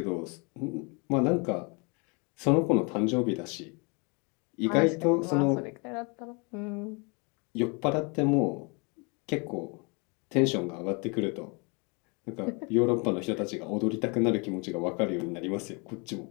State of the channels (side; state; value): right; quieter; 32.2 dB